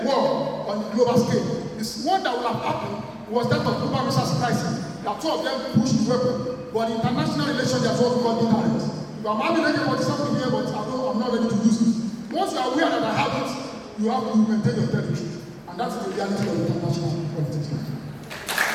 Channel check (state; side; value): identical; both; correlation 1.00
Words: war on the global scale. This one that will have happened was that of Cuban Missile Crisis. That two of them pushed the weapon. But in international relations, they are what we call deterrence. I'm having something here, but I'm not ready to use it. Once you are aware that I have it, you have to maintain your territory. And that's the reality of international politics.